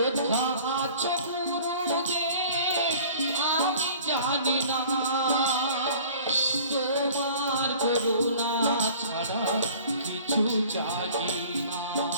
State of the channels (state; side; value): inverted; both; correlation -0.48